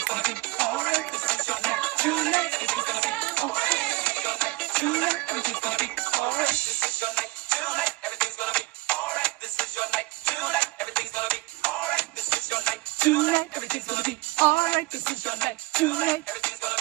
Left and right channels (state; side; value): quieter; left; 21.9 dB